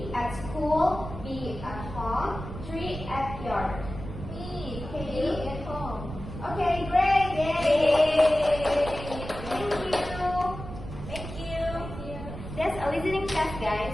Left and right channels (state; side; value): noise; right; rumble, 10 dB below the sound